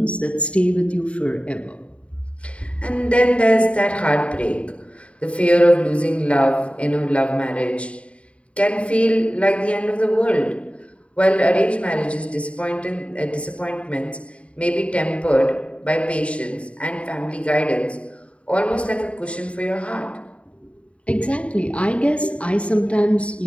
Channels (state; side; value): late; right; 0.062 ms